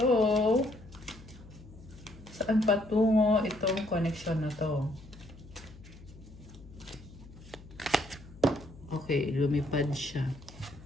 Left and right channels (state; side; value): noise; left; hum, 19 dB below the sound